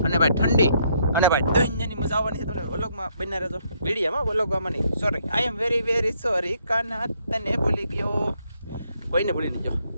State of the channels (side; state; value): both; inverted; correlation -0.72